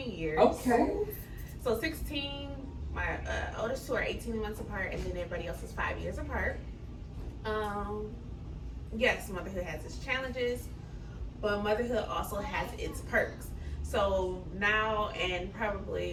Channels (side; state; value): both; identical; correlation 1.00